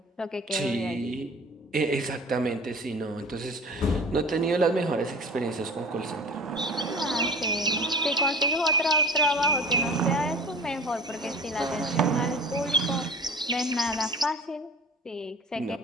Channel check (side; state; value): both; normal; correlation 0.40